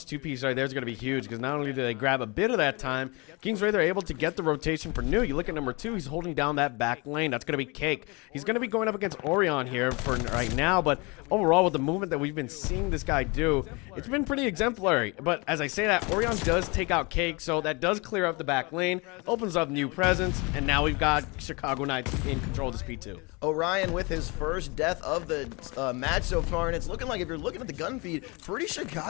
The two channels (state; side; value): quieter; right; 28.0 dB